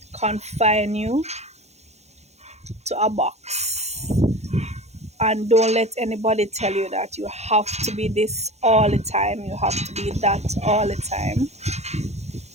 confine you to a box. And don't let anybody tell you that you have to be this all the time, you have to be that all the time.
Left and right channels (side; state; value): left; late; 0.32 ms